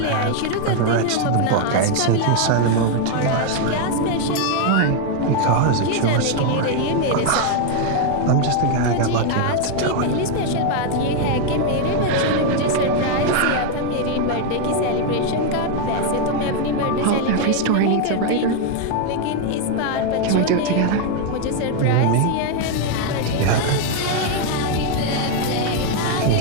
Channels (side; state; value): both; different; correlation 0.00